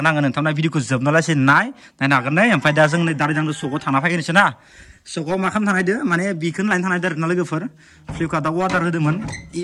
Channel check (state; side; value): identical; both; correlation 1.00